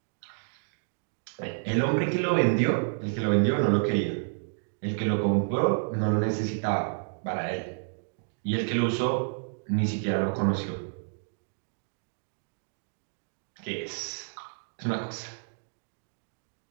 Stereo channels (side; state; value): left; silent; digital silence